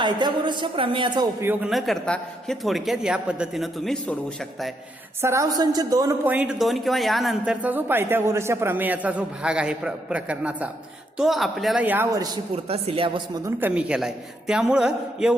प्रमेयाचा उपयोग न करता हे थोडक्यात या पद्धतीनं तुम्ही सोडवू शकताय. सराव संच 2.2 किंवा यानंतरचा जो पायथागोरसच्या प्रमेयाचा जो भाग आहे प्रकरणाचा, तो आपल्याला या वर्षी पुरता सिलेबस मधून कमी केलाय. त्यामुळं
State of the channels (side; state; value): both; normal; correlation 0.77